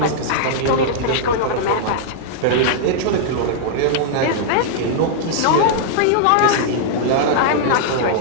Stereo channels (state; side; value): different; both; correlation -0.02